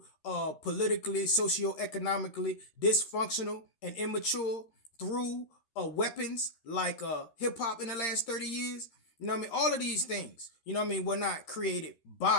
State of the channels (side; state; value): right; late; 13 ms